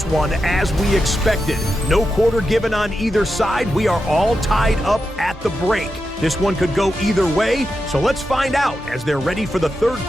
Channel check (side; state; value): both; normal; correlation 0.88